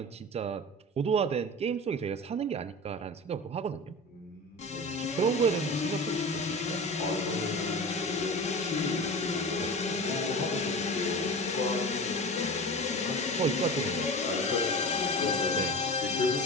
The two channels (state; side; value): normal; both; correlation 0.31